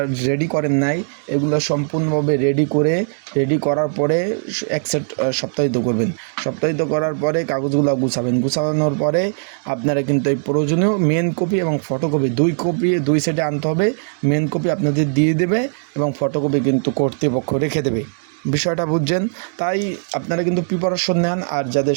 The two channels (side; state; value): left; silent; digital silence